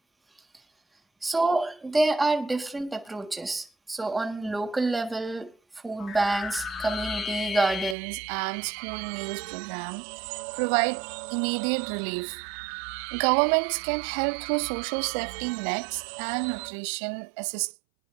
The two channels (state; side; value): drops out; left; at 8.0 s